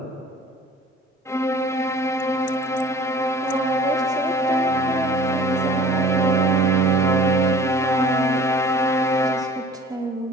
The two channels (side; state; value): both; normal; correlation 0.47